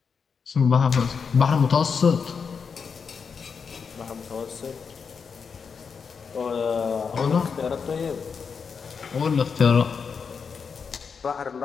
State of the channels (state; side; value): quieter; right; 5.9 dB